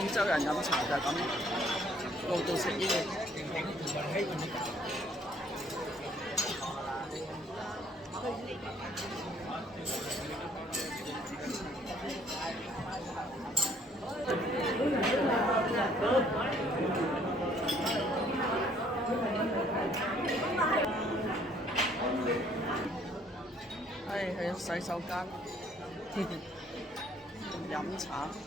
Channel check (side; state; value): both; normal; correlation 0.62